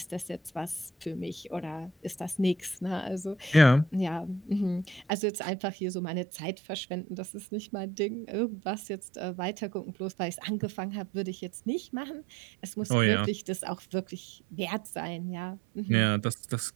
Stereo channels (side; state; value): left; drops out; at 5.1 s